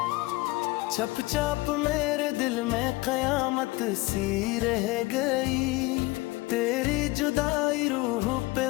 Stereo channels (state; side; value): quieter; right; 21.5 dB